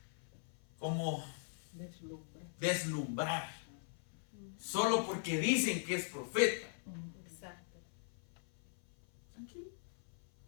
como deslumbrar solo porque dicen que es profeta. Exacto. Tranquilo.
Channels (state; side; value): silent; right; 51 dB below the other